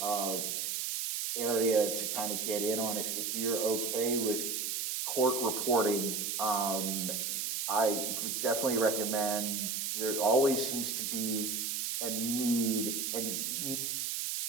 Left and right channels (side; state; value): right; noise; hiss, 1 dB below the sound